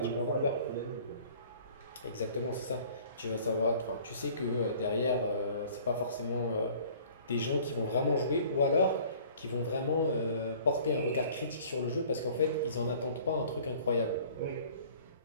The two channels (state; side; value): inverted; both; correlation -0.51